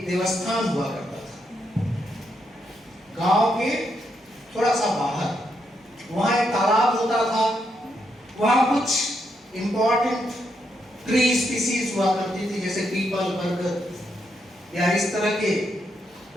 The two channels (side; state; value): both; normal; correlation 0.80